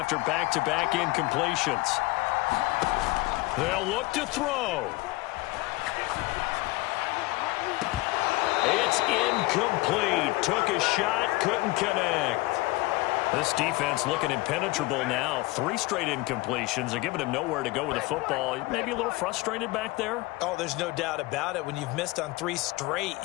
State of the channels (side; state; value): right; quieter; 21.4 dB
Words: back-to-back incompletions. They'll look to throw. It's incomplete. Took a shot, couldn't connect. This defense looking impenetrable now. 3 straight incompletions. They're giving him nowhere to go with the football. Maybe a little frustrated back there. Oh, there's no doubt about it. When you've missed on 3 straight,